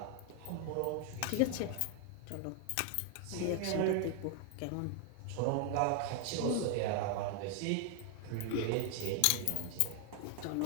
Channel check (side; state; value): both; different; correlation 0.00